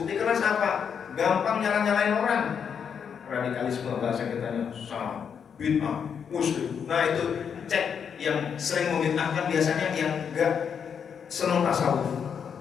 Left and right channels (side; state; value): right; quieter; 7.2 dB